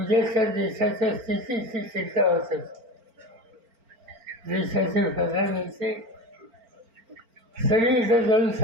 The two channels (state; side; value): late; left; 4.4 ms